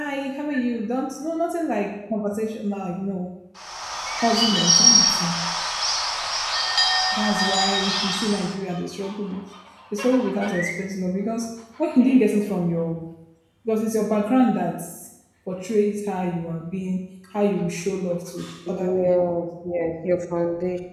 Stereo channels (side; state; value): both; identical; correlation 1.00